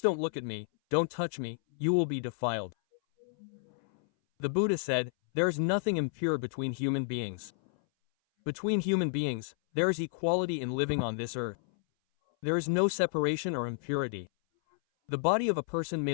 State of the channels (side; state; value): right; silent; 57 dB below the other